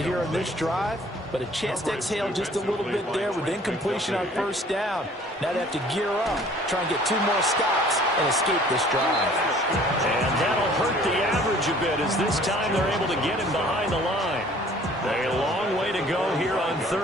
here in this drive, but a chance to exhale just a little bit there with incompletion on first down. Now they have to gear up, try and get 2 more stops, and escape this drive. And that'll hurt the average a bit as this time they're able to get him behind the line. A long way to go here on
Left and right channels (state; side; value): normal; both; correlation 0.53